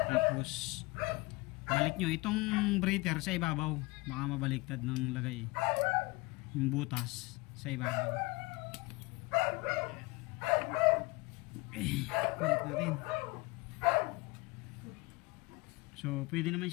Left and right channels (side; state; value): right; quieter; 23.6 dB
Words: balik nyo itong breather sa ibabaw, baka mabaliktad ng lagay yung butas sa ibabaw. Balik natin. So pwede naman